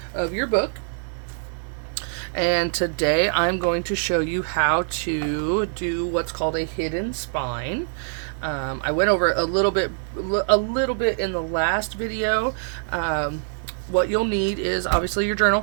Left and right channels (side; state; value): left; silent; digital silence